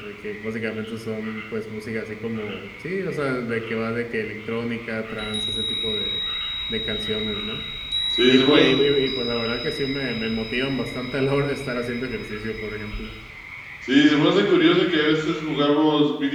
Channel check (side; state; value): both; identical; correlation 1.00